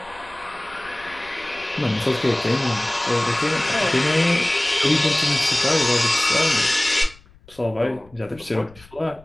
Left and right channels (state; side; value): noise; left; rumble, 25 dB below the sound